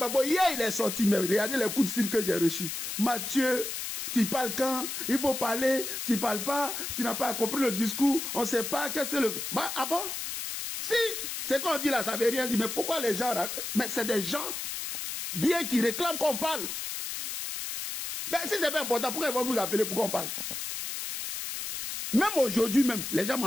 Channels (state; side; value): noise; left; hiss, 5 dB below the sound